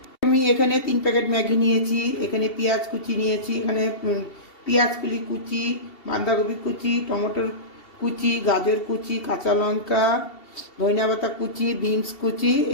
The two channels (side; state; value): right; late; 2.7 ms